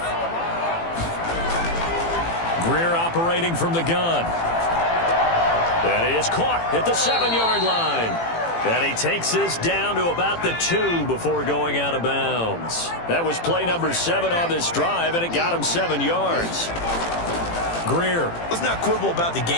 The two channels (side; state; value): right; late; 18 ms